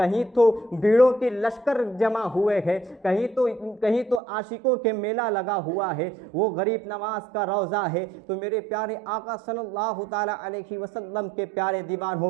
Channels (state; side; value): drops out; left; at 4.2 s